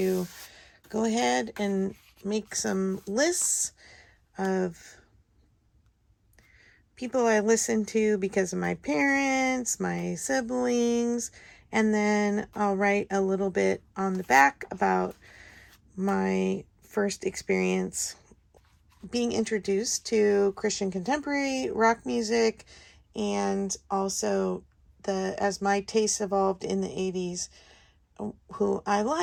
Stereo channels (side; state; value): both; identical; correlation 1.00